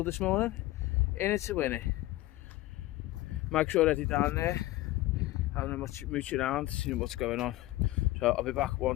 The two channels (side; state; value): right; quieter; 17.4 dB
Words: this morning. In it to win it. Mike's already down there, having a mooch around, seeing what's going on. So I'll be back